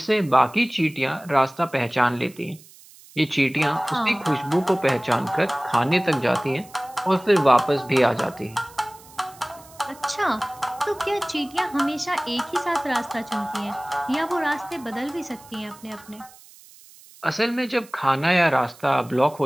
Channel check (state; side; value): noise; right; hiss, 23 dB below the sound